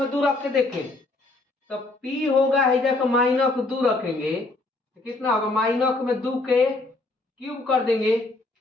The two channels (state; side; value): quieter; right; 3.1 dB